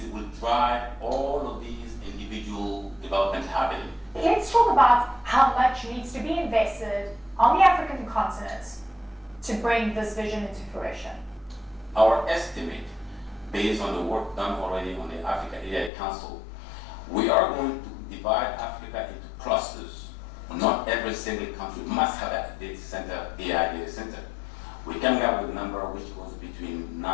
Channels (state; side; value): drops out; right; at 15.9 s